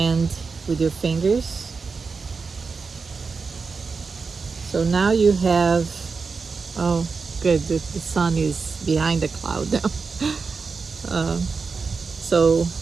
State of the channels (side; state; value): left; quieter; 4.8 dB